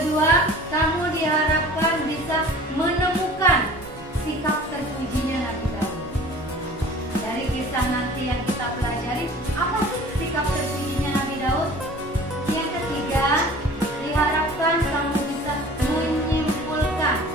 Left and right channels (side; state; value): both; normal; correlation 0.45